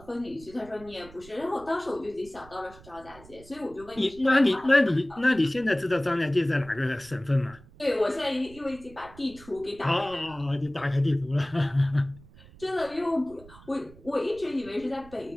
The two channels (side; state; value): right; noise; rumble, 21 dB below the sound